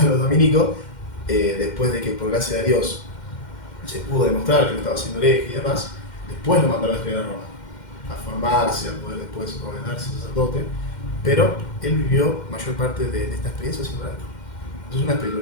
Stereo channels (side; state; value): right; late; 2.1 ms